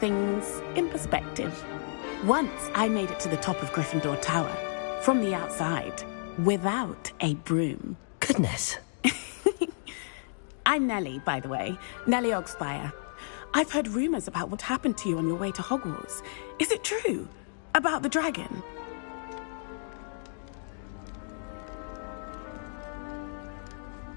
in perspective. Once I made it to the top of Gryffindor Tower, from the outside, without a broom. Goodness. I'm Nellie, by the way. Nellie Ogspire. I've heard rumors about what happened to you on your way to Hogwarts. Is it true? About the dragon?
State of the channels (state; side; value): silent; right; digital silence